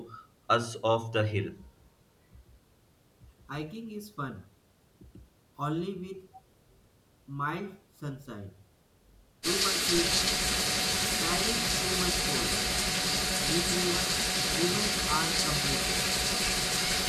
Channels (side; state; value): both; identical; correlation 1.00